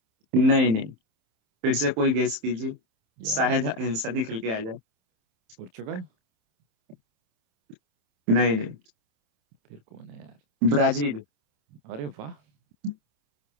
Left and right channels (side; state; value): left; late; 27 ms